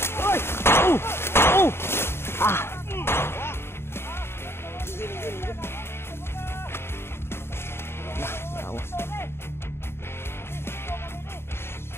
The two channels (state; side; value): late; right; 0.12 ms